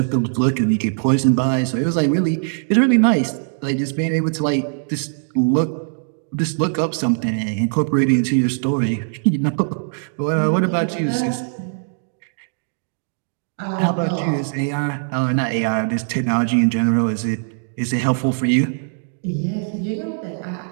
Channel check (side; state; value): left; silent; digital silence